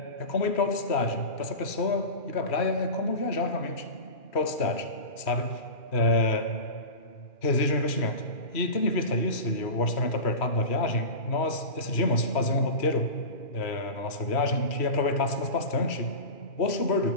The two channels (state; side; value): late; right; 2.4 ms